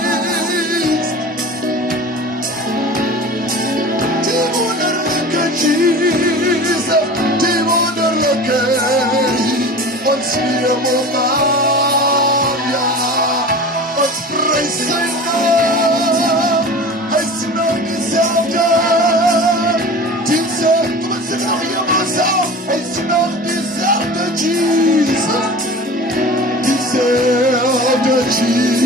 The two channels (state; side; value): normal; both; correlation 0.36